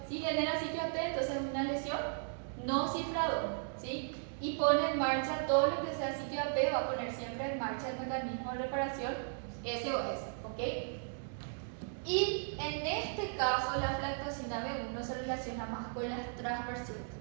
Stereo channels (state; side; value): silent; left; digital silence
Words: Si genera sitio AP, entonces es una lesión no cifradora, ¿sí? Y pone en marcha todo lo que sea sitio AP, va a poner siempre en marcha el mecanismo de reparación SOS, ¿ok? Y en este caso la aflatoxina B1 se relaciona más con las transversiones,